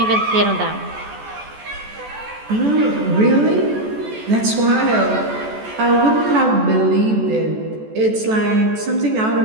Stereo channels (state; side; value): late; left; 14 ms